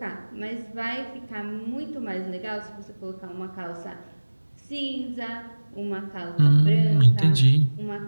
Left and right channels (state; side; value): inverted; both; correlation -1.00